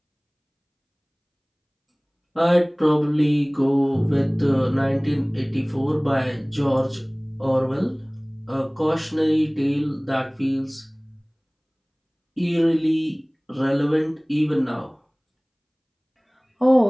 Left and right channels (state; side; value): identical; both; correlation 1.00